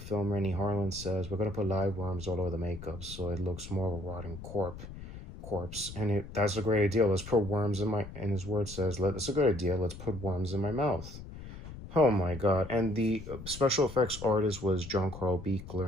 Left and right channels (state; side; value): noise; left; rumble, 12 dB below the sound